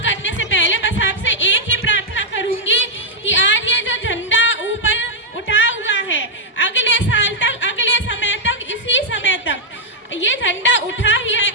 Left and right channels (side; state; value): both; normal; correlation -0.04